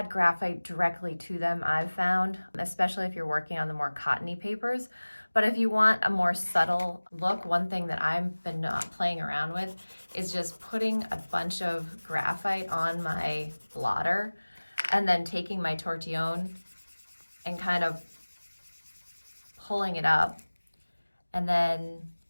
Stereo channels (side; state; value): both; inverted; correlation -1.00